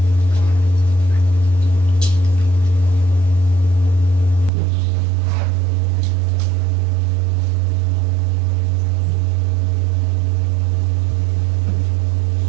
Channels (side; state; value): left; drops out; at 4.5 s